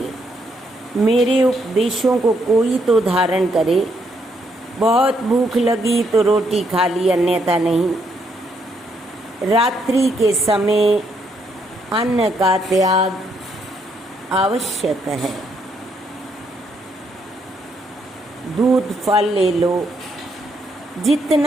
मेरे उपदेशों को कोई तो धारण करे। बहुत भूख लगी तो रोटी खा ली, अन्यथा नहीं। रात्रि के समय अन्न का त्याग आवश्यक है। दूध फल ले लो।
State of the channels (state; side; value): normal; both; correlation 0.74